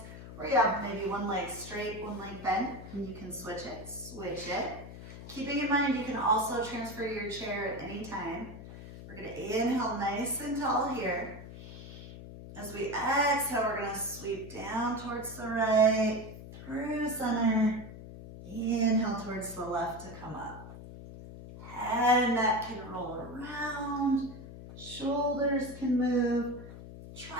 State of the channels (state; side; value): noise; left; hum, 13 dB below the sound